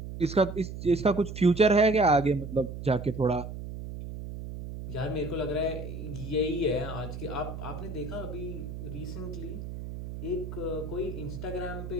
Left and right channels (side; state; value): right; noise; hum, 8 dB below the sound